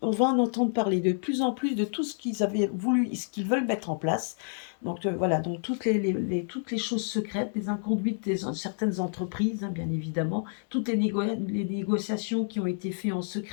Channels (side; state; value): right; silent; digital silence